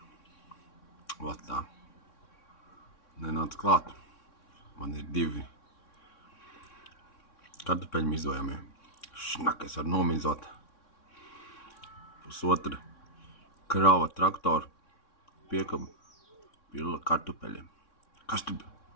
Vat tā. Nenāc klāt. Man ir 2 kartupeļu mizojamie. Šnak, es varu nomizot. Pusotra krava traktoru piekabu pila kartupeļiem. Kas tu?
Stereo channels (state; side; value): late; right; 3.6 ms